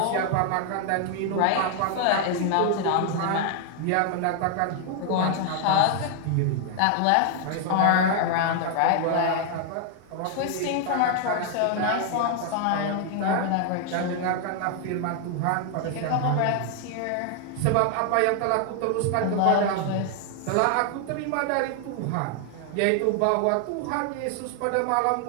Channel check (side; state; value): both; different; correlation 0.00